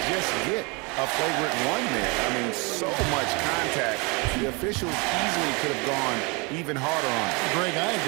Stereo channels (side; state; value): left; quieter; 29.3 dB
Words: just get a flagrant 1 there. I mean, so much contact. The officials easily could have gone even harder on him. Greg, I